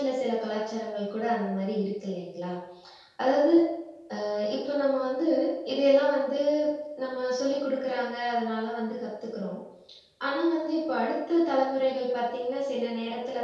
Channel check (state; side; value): identical; both; correlation 1.00